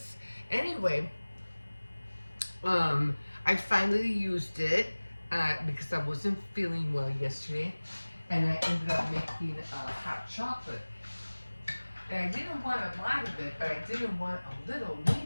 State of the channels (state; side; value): inverted; both; correlation -1.00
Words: Anyway, I finally used it because I wasn't feeling well yesterday, and I ended up making hot chocolate. And I didn't want a lot of it, but I didn't want a little